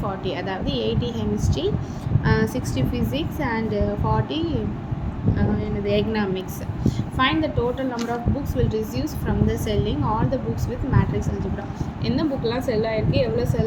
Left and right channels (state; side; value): identical; both; correlation 1.00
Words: 40, அதாவது 80 chemistry, 60 physics and 40 economics. Find the total number of books will receive from the selling all the books with matrix algebra. என்ன புக்லாம் செல் ஆகிருக்கு, எவ்வளோ